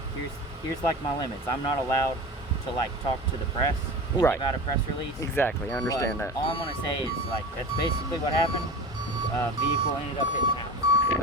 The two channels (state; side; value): normal; both; correlation 0.32